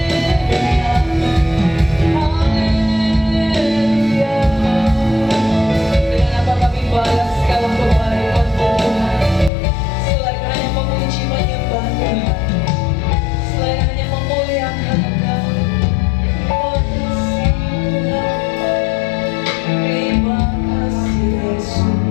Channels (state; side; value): drops out; right; at 9.5 s